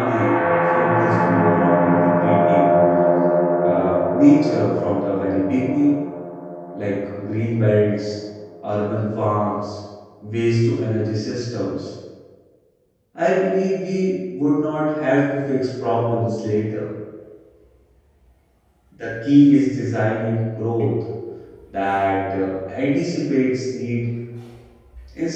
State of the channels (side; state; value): both; identical; correlation 1.00